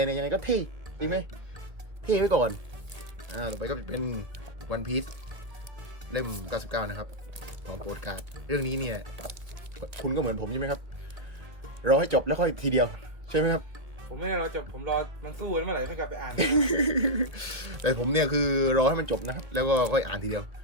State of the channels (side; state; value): left; late; 1.5 ms